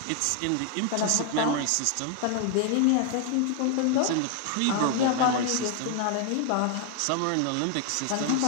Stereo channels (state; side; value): different; both; correlation 0.00